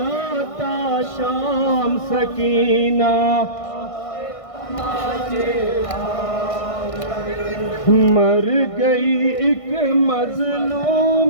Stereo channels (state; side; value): late; right; 1.6 ms